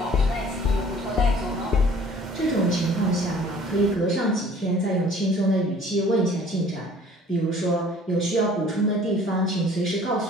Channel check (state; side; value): normal; both; correlation 0.52